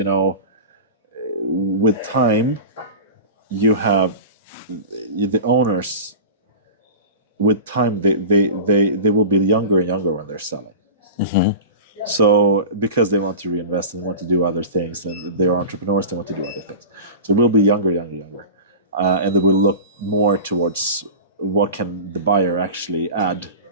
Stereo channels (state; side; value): inverted; both; correlation -0.32